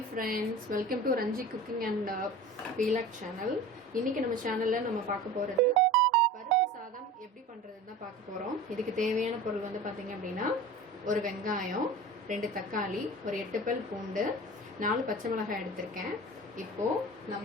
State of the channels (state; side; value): normal; both; correlation 0.36